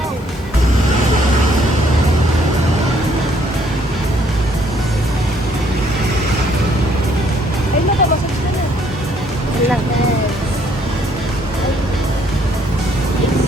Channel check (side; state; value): both; normal; correlation 0.66